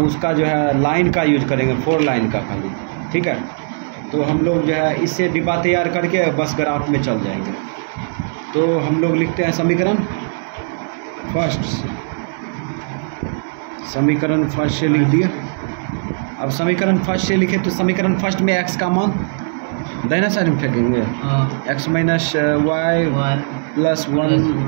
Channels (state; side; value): silent; left; digital silence